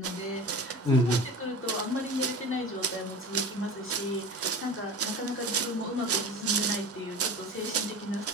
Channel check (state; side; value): normal; both; correlation 0.35